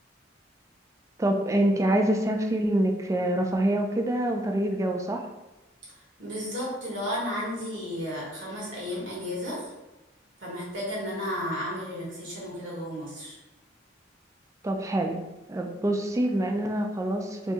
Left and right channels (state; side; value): normal; both; correlation 0.70